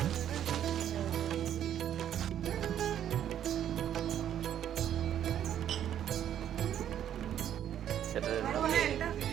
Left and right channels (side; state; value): left; quieter; 10.3 dB